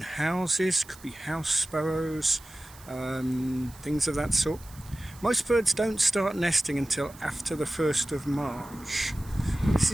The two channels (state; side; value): noise; right; hiss, 22 dB below the sound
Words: houses, could be house sparrows, things of that sort. Most birds don't start nesting until after the 1st of March. This